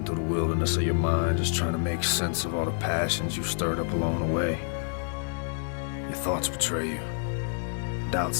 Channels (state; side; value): silent; right; 59 dB below the other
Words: through the wilderness of your mind, just trying to make sense of all the passions you've stirred up along the way. Your thoughts betray you. Doubt